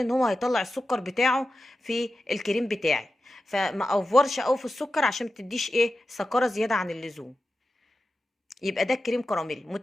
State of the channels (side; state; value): both; normal; correlation 0.91